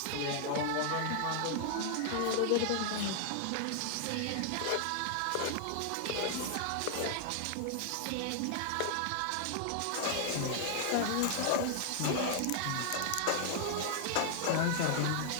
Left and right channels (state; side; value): different; both; correlation 0.00